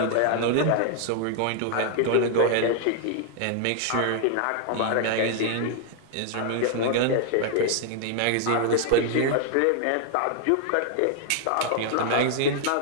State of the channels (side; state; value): both; different; correlation 0.00